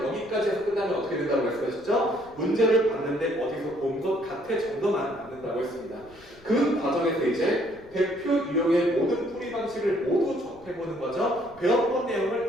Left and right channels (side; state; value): left; noise; rumble, 25 dB below the sound